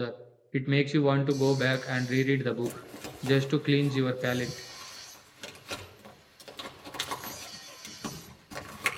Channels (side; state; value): both; identical; correlation 1.00